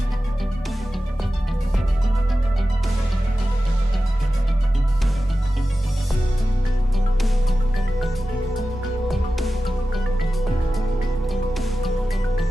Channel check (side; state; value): both; normal; correlation 0.94